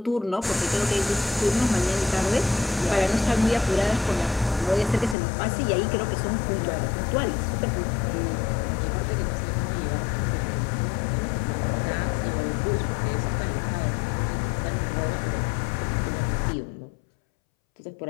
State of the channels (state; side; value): drops out; right; at 5.2 s